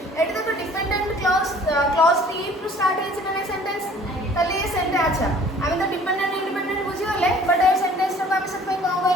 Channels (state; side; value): normal; both; correlation 0.52